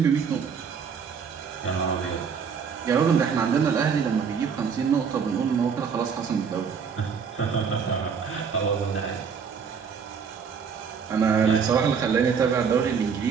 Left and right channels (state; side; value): quieter; left; 6.4 dB